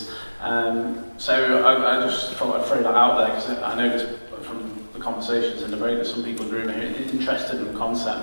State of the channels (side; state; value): both; inverted; correlation -1.00